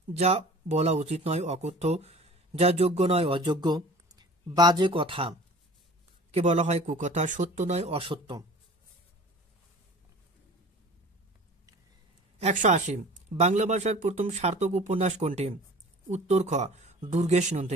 যা বলা উচিত নয় অকথ্য, যা যোগ্য নয় অযোগ্য। বাজে কথা কে বলা হয় কুকথা, সত্য নয় অসত্য। 180 বাংলা ভাষার প্রথম সার্থক উপন্যাস কোনটি? উত্তর খ দুর্গেশ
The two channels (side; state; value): both; normal; correlation 0.44